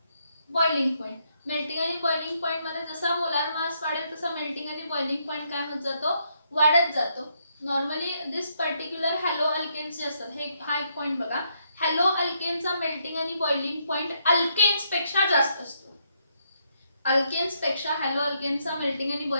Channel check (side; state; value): both; inverted; correlation -0.75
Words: बॉइलिंग पॉईंट. मेल्टिंग आणि बॉइलिंग पॉईंट मध्ये जसा मोलार मास वाढेल तसा मेल्टिंग आणि बॉइलिंग पॉईंट काय होत जातो, वाढत जातो. नॉर्मली दिस पर्टिक्युलर हॅलो अल्केन्स जे असतात, हे हा एक पॉईंट बघा, हॅलो अल्केनचा मेल्टिंग आणि बॉइलिंग पॉईंट अल्केन्स पेक्षा जास्त असतो. अल्केन्स पेक्षा हॅलो अल्केनचा मेल्टिंग आणि